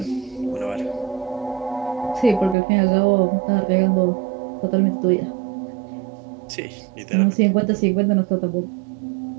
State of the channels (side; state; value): left; drops out; at 2.6 s